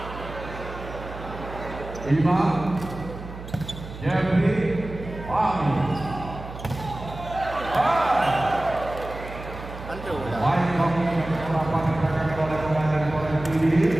5, Fahmi. Antu dah. Baik kami melakukan gerakan oleh komandan Polres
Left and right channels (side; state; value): right; noise; hum, 12 dB below the sound